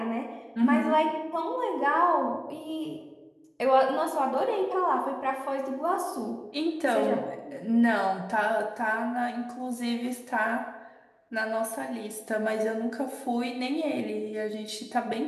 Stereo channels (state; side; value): identical; both; correlation 1.00